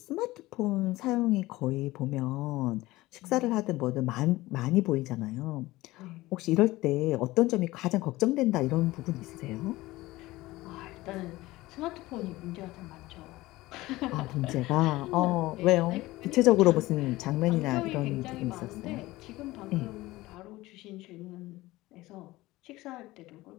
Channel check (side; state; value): right; quieter; 18.7 dB